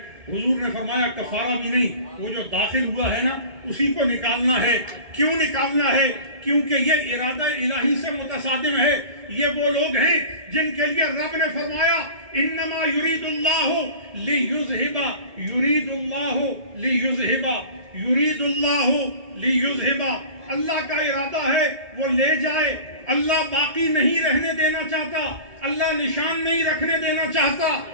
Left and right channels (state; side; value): late; left; 2.2 ms